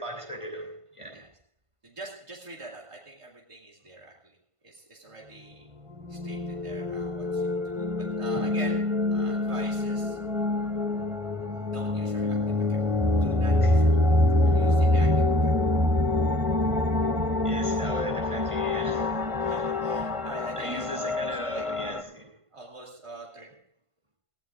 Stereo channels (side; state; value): left; late; 1.5 ms